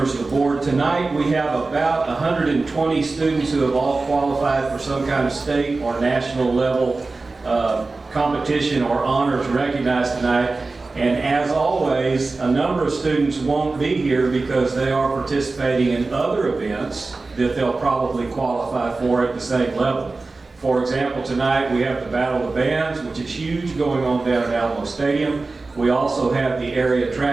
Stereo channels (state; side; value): quieter; left; 3.6 dB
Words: of the board. Tonight we have about 120 students who have all qualified for some kind of state or national level competition or honors recognized tonight. And as always, a number of students won't be here because they are participating in other events that they'll probably qualify for at the same level. For example, tonight we have the Battle of the Bands, which is huge, going on down at Alamo Stadium. We also have the area